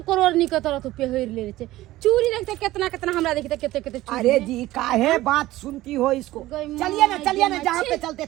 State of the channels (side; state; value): left; quieter; 16.5 dB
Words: करोड़ नी के तरह तू पहिर ले छे चूड़ी देखते कितना कितना हमरा देखते कितने कितने चूड़ी अरे जी काहे बात सुनती हो इसको। चलिए ना जहाँ पे चलते